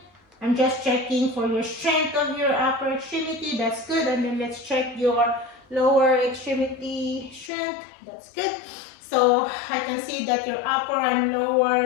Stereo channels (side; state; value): right; drops out; at 7.5 s